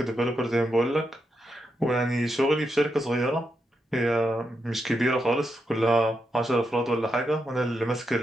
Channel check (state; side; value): normal; both; correlation 0.84